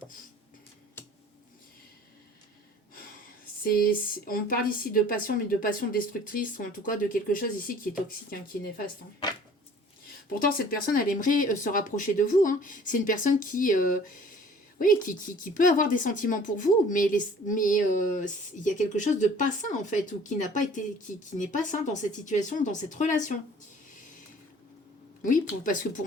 on parle ici de passion, mais de passion destructrice, ou en tout cas de quelque chose ici qui est toxique, hein, qui est néfaste. Hein. Pourtant, cette personne, elle aimerait se rapprocher de vous. Hein. C'est une personne qui peut avoir des sentiments pour vous, mais il y a quelque chose de pas sain, en fait, ou qui n'est pas sain dans cette situation, dans cette relation. Oui, parce que pour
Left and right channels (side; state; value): both; normal; correlation 0.50